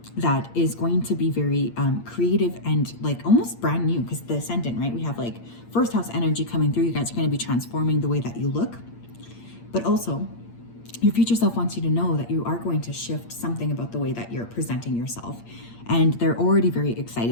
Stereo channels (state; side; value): late; right; 8.7 ms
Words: that is going to be very creative and like almost brand new, because the Ascendant, right? We have like first house energy coming through. You guys are going to be transforming the way that you look, but also your future self wants you to know that you are going to shift something about the way that you're presenting yourself. And they're already very